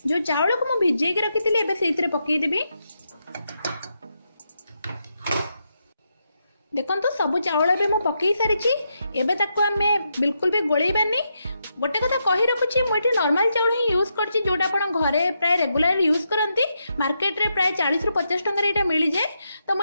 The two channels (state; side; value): inverted; both; correlation -0.83